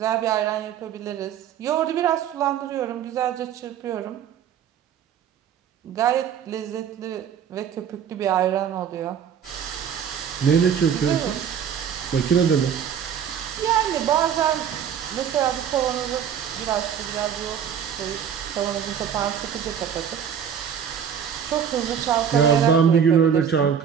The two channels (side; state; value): left; quieter; 8.3 dB